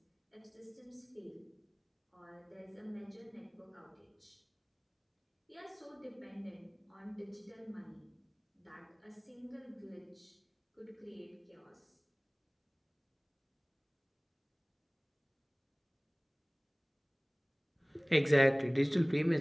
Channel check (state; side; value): identical; both; correlation 1.00